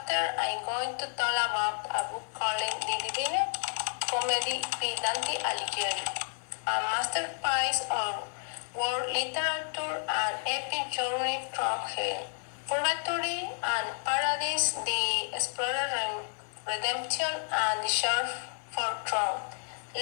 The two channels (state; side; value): silent; right; 57 dB below the other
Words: After, I'm going to talk about a book called The Divine Comedy by Dante Aligheri, a masterpiece of world literature and epic journey through hell, purgatory, and paradise, the explorer redemption, and the search for throne.